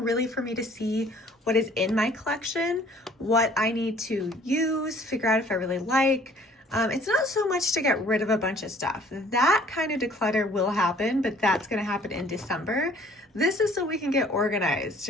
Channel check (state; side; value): normal; both; correlation 0.55